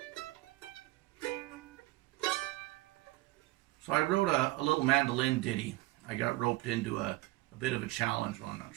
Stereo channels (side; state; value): left; quieter; 19.2 dB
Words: So I wrote a little mandolin ditty. I got roped into a bit of a challenge. Well, I'm not